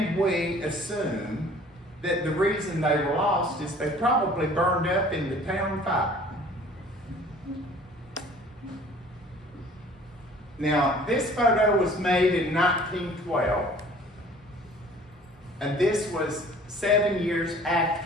we assume that the reason they were lost is they probably burned up in the town fire. Now, this photo was made in 1912, and this was 7 years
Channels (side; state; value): both; normal; correlation 0.51